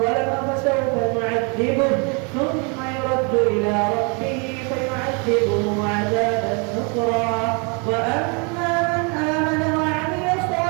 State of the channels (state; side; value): quieter; left; 34.1 dB